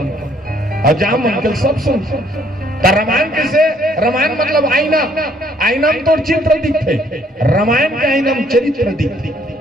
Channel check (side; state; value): both; normal; correlation 0.64